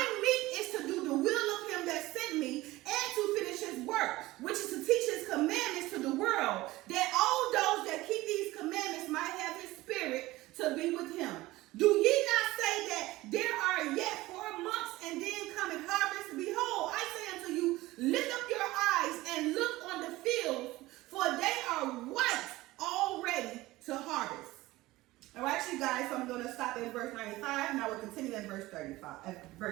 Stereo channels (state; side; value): quieter; left; 18.5 dB